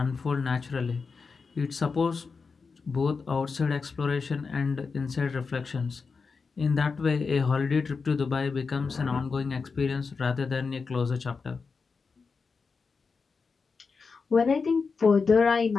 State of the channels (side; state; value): right; quieter; 4.9 dB